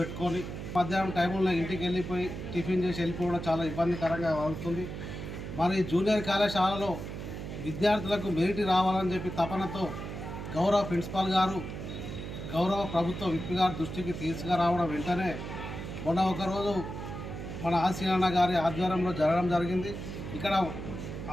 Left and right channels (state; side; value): noise; right; hum, 7 dB below the sound